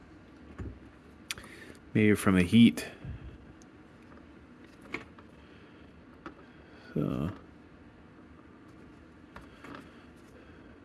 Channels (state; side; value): identical; both; correlation 1.00